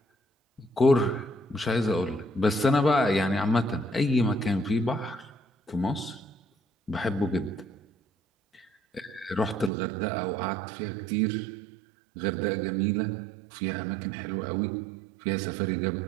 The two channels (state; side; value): drops out; left; at 9.7 s